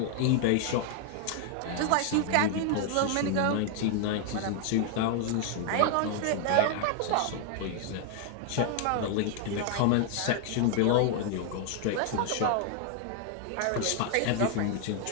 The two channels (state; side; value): different; both; correlation 0.00